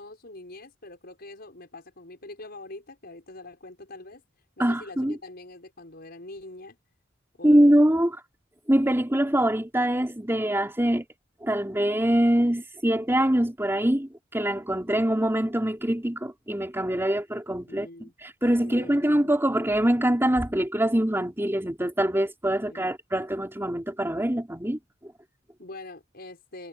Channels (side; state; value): both; normal; correlation 0.91